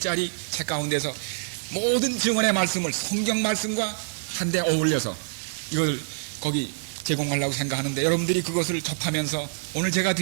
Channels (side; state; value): left; silent; 61 dB below the other